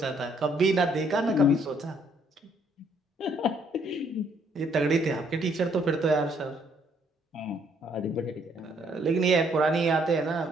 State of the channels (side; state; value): both; normal; correlation 0.67